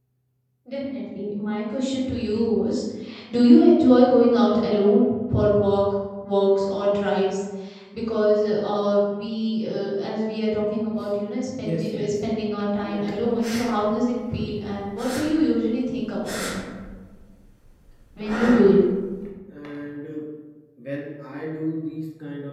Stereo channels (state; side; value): identical; both; correlation 1.00